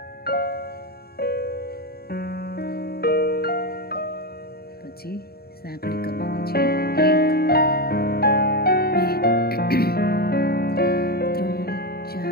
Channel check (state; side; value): late; right; 0.45 ms